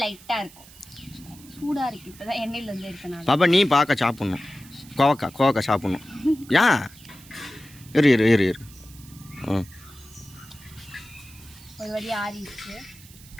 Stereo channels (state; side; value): noise; right; hiss, 21 dB below the sound